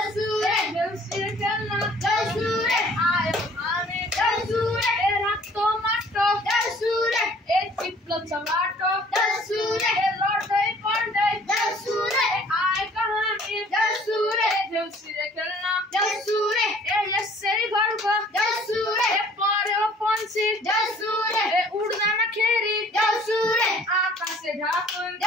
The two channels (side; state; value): both; normal; correlation 0.54